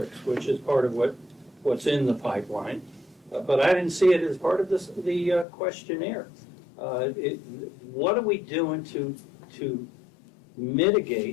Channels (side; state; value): right; drops out; at 5.5 s